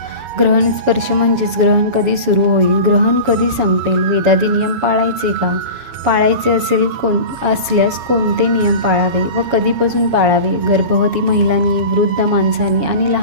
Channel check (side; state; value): left; late; 7.2 ms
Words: ग्रहण स्पर्श म्हणजेच ग्रहण कधी सुरू होईल, ग्रहण कधी संपेल, वेदादी नियम पाळायचे का? पाळायचे असल्यास कोणते नियम पाळावे व कधीपासून पाळावे? गर्भवती महिलांनी, वृद्ध माणसांनी आणि